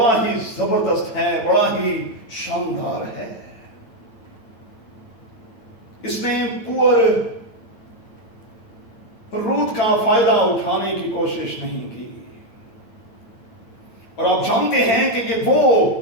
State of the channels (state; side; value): late; right; 9.1 ms